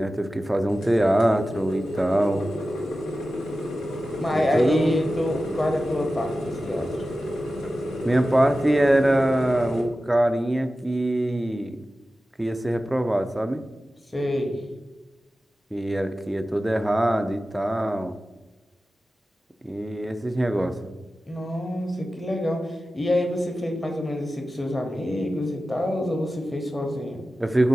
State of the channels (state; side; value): normal; both; correlation 0.94